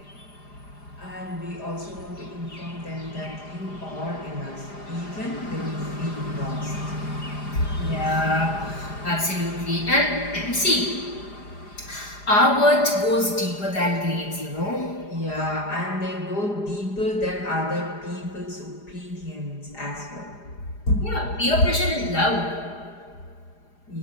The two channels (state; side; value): late; right; 4.9 ms